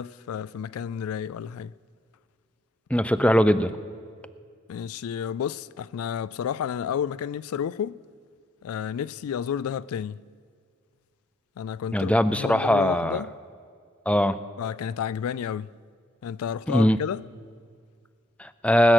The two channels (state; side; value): normal; both; correlation 0.72